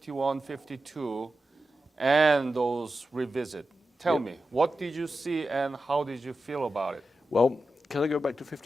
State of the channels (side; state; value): both; normal; correlation 0.92